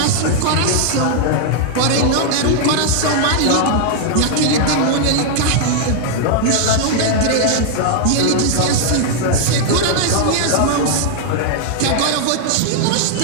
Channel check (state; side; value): different; both; correlation 0.00